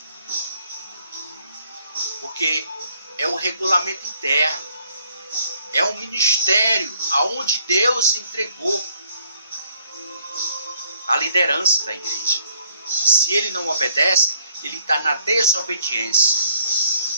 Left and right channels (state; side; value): inverted; both; correlation -0.66